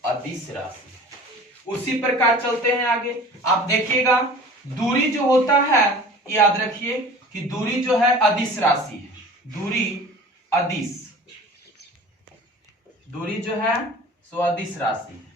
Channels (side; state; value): both; normal; correlation 0.43